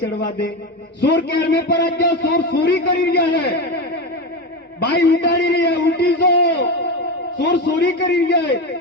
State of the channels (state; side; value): normal; both; correlation 0.19